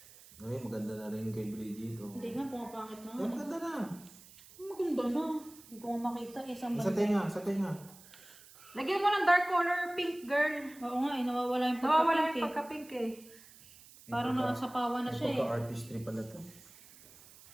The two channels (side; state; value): right; noise; hiss, 21 dB below the sound